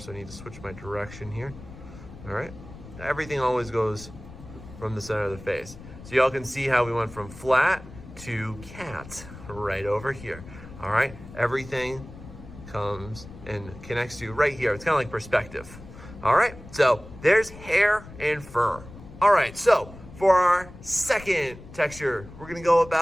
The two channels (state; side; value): noise; left; rumble, 16 dB below the sound